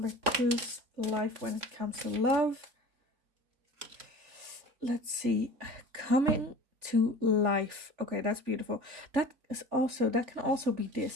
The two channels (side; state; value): left; late; 3.4 ms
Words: 2's life when it comes to love? Let's see. Coming to life. Okay, that's beautiful. That can also be